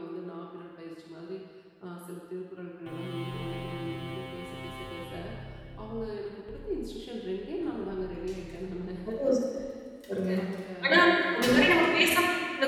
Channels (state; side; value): identical; both; correlation 1.00